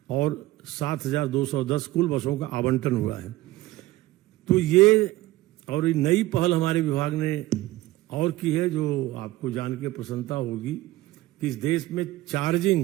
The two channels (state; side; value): quieter; left; 17.4 dB